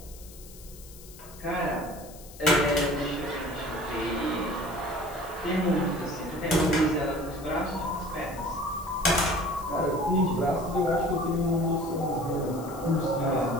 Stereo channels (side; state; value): left; noise; hiss, 19 dB below the sound